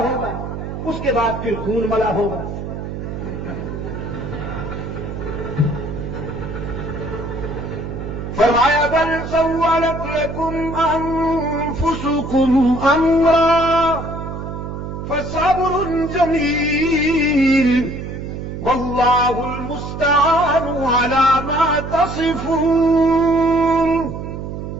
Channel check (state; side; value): noise; right; hum, 7 dB below the sound